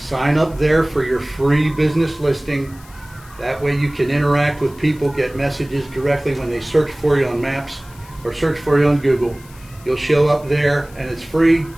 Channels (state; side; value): noise; left; hiss, 24 dB below the sound